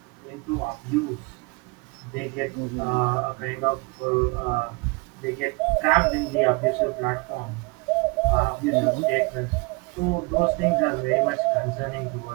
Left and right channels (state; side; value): quieter; left; 28.7 dB